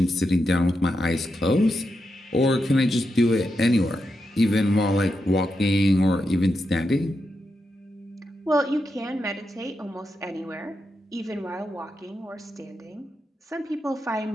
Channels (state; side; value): normal; both; correlation 0.86